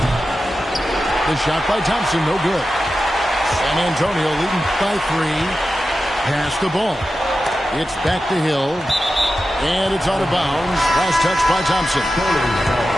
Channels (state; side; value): normal; both; correlation 0.92